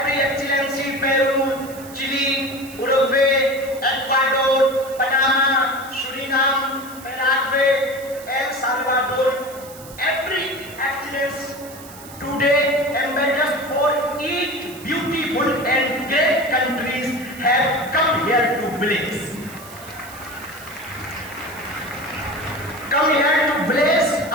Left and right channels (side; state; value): right; noise; hiss, 18 dB below the sound